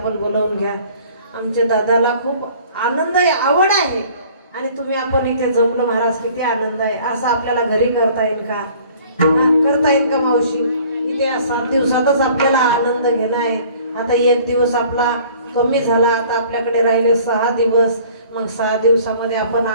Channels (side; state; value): both; inverted; correlation -0.52